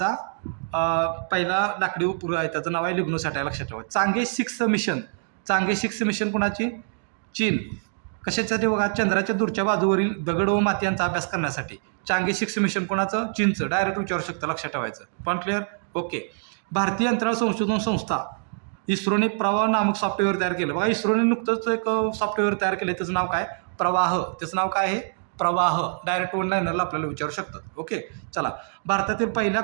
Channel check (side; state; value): left; silent; digital silence